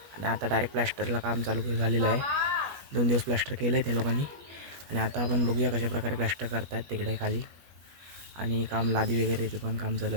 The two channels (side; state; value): left; late; 21 ms